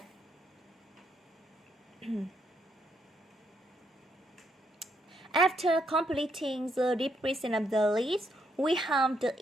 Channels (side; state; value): both; normal; correlation 0.76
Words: After completing the description of the list, we have the